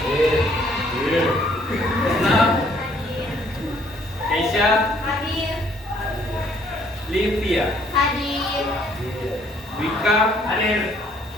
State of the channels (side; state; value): both; normal; correlation 0.64